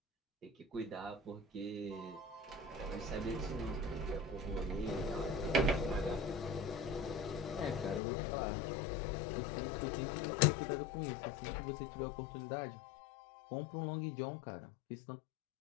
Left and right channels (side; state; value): right; drops out; at 8.0 s